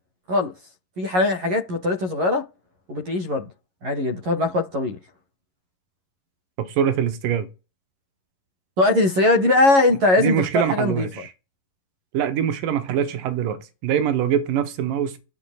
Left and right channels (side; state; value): left; late; 11 ms